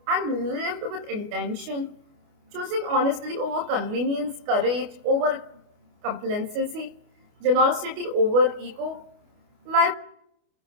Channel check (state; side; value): late; left; 28 ms